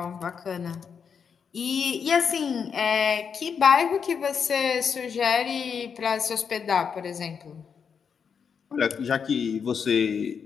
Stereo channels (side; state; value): right; quieter; 6.6 dB